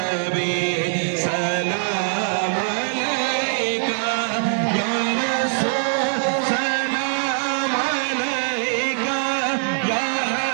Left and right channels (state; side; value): silent; left; digital silence